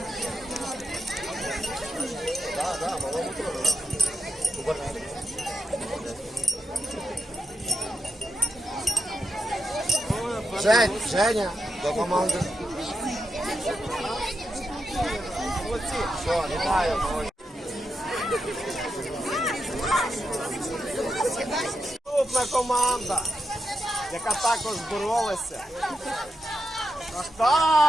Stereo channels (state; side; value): normal; both; correlation 0.84